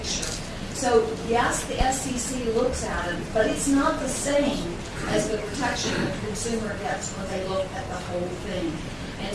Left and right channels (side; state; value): both; identical; correlation 1.00